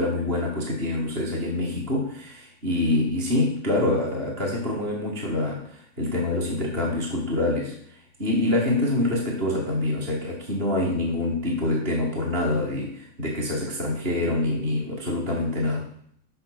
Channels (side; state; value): left; late; 2.8 ms